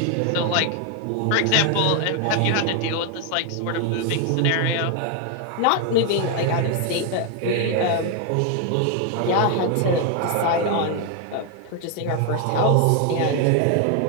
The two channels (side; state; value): both; different; correlation 0.01